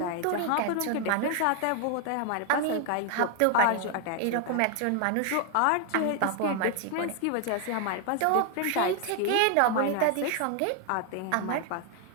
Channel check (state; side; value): different; both; correlation 0.00